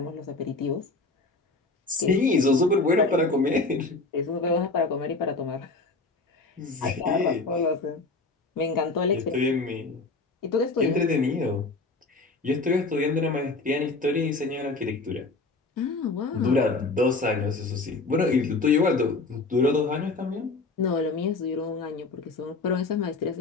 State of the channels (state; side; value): quieter; right; 3.6 dB